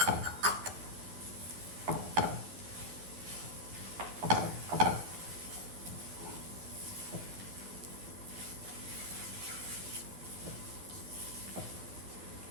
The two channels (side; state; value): left; late; 11 ms